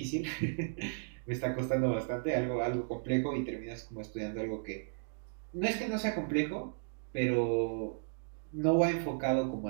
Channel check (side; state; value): left; silent; digital silence